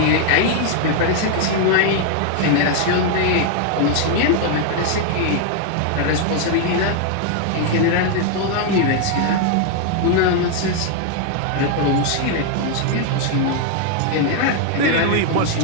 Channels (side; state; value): both; different; correlation 0.00